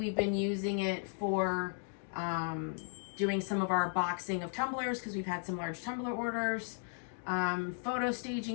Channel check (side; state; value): right; silent; 54 dB below the other